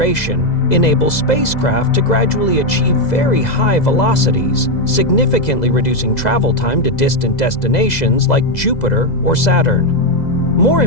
enables spacecraft to gradually achieve very high velocities, significantly reducing travel time to distant destinations like Jupiter or Saturn. More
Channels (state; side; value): late; right; 2.0 ms